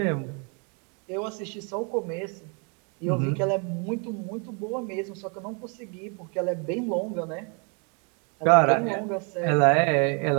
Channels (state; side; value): quieter; left; 36.2 dB